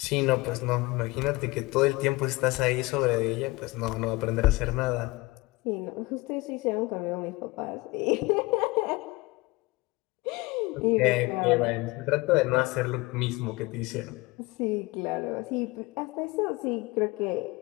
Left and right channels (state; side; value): quieter; right; 22.5 dB